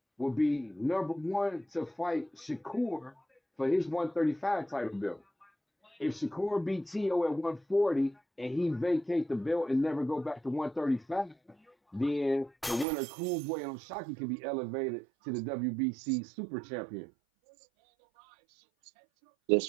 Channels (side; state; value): left; drops out; at 12.9 s